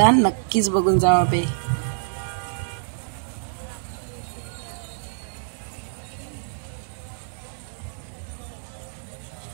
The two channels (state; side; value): silent; left; digital silence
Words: नक्कीच बघून जावा बे.